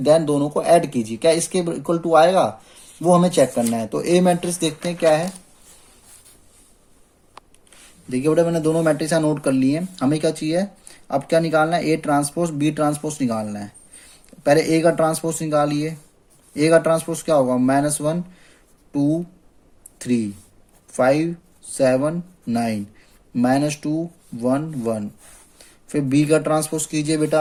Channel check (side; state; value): both; identical; correlation 1.00